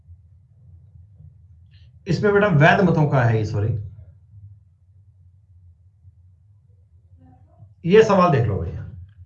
इसमें बेटा वैध मतों का है, सॉरी, ये सवाल देख लो भैया।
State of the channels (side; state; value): both; identical; correlation 1.00